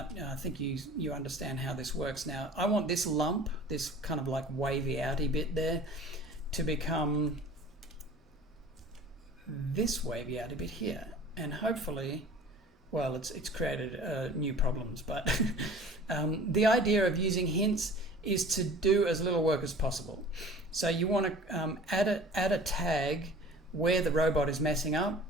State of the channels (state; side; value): normal; both; correlation 0.44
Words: I think you understand how this works now. I want this lump, this kind of like wavy outy bit there, to become this wavy outy bit here, and hopefully, well, it's created new problems. But the idea of using hints is to do as little work as possible. So you want to add a tag where the robot is messing up